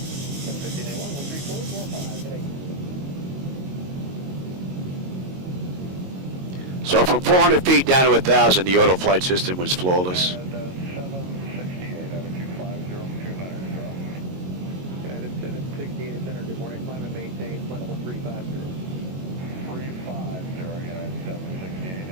13445. So from 400 feet down to 1,000, the auto flight system was flawless. 768 out of 250, United 768 center, good morning, climb and maintain, flight level 350. 350, United 768,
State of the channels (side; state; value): left; late; 22 ms